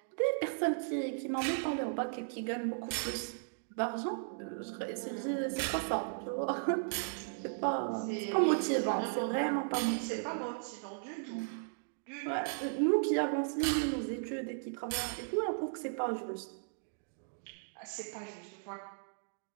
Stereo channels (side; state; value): left; silent; digital silence